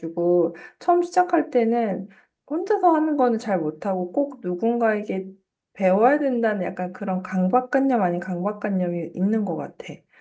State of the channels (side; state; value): both; identical; correlation 1.00